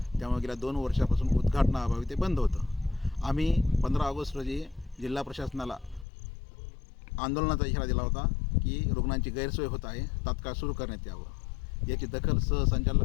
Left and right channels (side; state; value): right; drops out; at 6.1 s